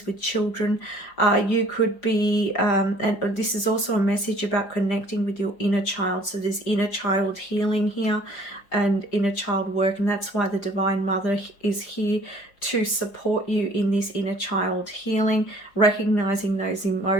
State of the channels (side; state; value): right; late; 5.0 ms